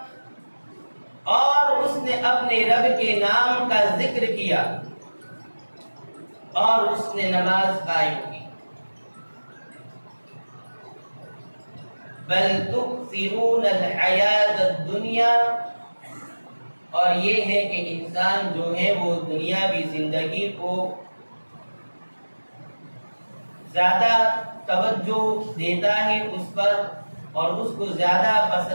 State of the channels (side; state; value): both; inverted; correlation -1.00